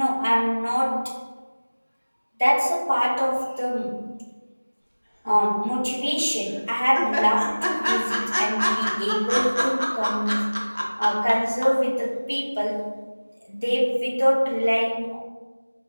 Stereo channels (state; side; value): inverted; both; correlation -1.00